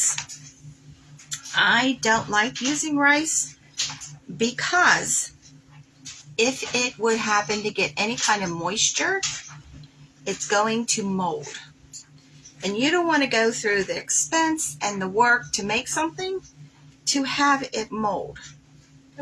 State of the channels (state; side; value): identical; both; correlation 1.00